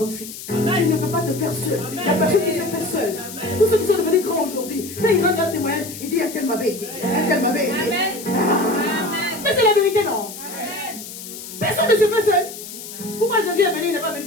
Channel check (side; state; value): left; noise; hiss, 12 dB below the sound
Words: Tu ne peux pas te faire seul. Il y a personne qui s'est fait seul. Tous ceux qui sont devenus grands aujourd'hui, quand ils rendent un témoignage, ils disent un tel m'avait aidé. Un tel m'avait aidé. Mais c'est la vérité, non? Personne ne se fait seul. Pourquoi Jésus est venu, il n'est pas venu